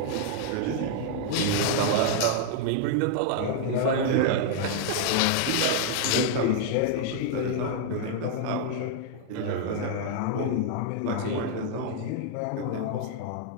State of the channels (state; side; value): different; both; correlation 0.00